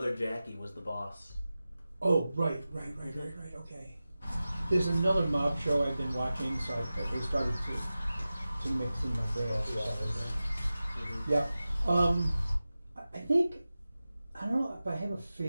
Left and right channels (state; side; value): inverted; both; correlation -0.95